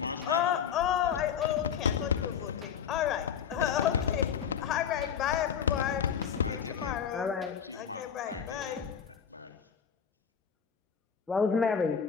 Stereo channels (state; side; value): quieter; right; 7.6 dB